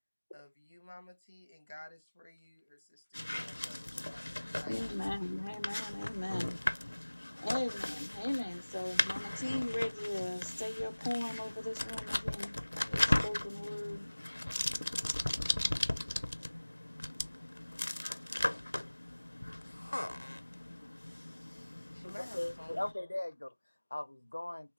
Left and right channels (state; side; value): inverted; both; correlation -1.00